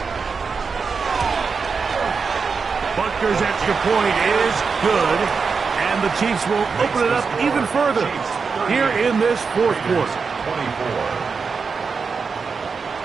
Butker's extra point is good, and the Chiefs will open it up even further here in this fourth quarter. 24.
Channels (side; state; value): left; quieter; 5.2 dB